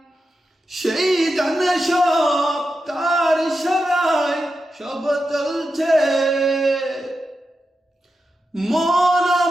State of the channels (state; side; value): normal; both; correlation 0.89